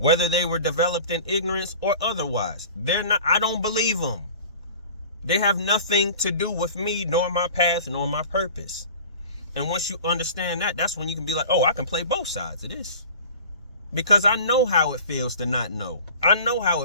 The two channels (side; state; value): both; inverted; correlation -0.41